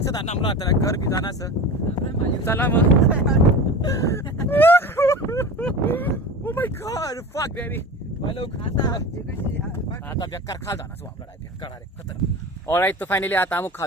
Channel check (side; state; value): both; normal; correlation 0.32